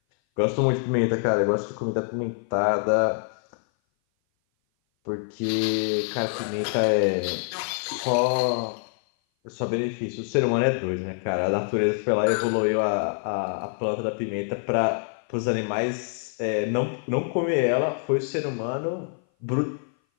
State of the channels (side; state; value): right; silent; 57 dB below the other